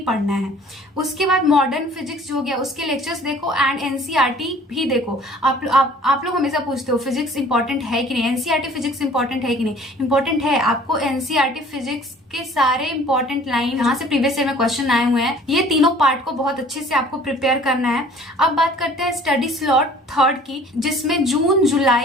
पढ़ना है। उसके बाद मॉडर्न फिजिक्स जो हो गया उसके लेक्चर्स देखो एंड एनसीईआरटी भी देखो। आप लोग हमेशा पूछते हो फिजिक्स इंपॉर्टेंट है कि नहीं, एनसीईआरटी फिजिक्स इंपॉर्टेंट है कि नहीं। इंपॉर्टेंट है, आपको एनसीईआरटी फिजिक्स के सारे इंपॉर्टेंट लाइन यहाँ से प्रीवियस ईयर में क्वेश्चन आए हुए हैं, ये तीनों पार्ट को बहुत अच्छे से आपको प्रिपेयर करना है। अब बात करते हैं स्टडी स्लॉट 3 की, जिसमें जून,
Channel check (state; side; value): normal; both; correlation 0.51